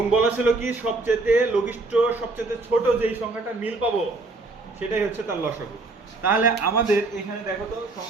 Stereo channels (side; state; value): left; quieter; 3.3 dB